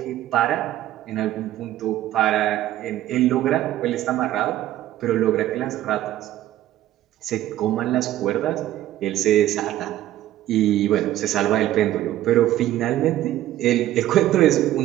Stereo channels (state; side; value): quieter; left; 13.6 dB